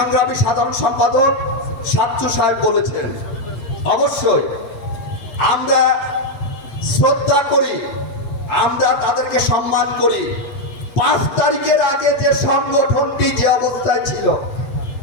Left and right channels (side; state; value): right; late; 8.7 ms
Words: সাধারণ সম্পাদক সাচ্চু সাহেব বলেছেন, অবশ্যই আমরা শ্রদ্ধা করি, আমরা তাদেরকে সম্মান করি। 5 তারিখের আগে যে সংগঠনটি যে অবস্থায় ছিল,